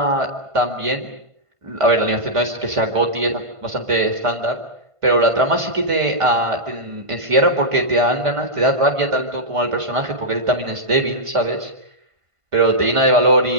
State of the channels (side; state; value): left; late; 1.5 ms